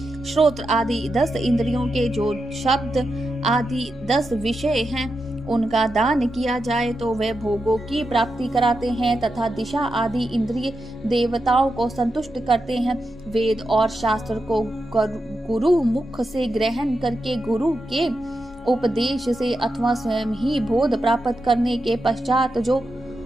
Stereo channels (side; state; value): both; normal; correlation 0.87